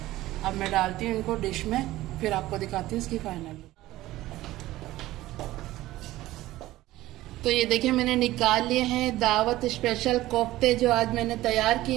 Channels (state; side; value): quieter; left; 16.4 dB